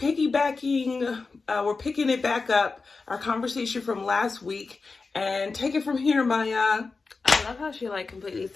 we're picking it back up, our conversation from last week, and take it from here, Maya. I love how she completely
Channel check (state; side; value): quieter; right; 4.2 dB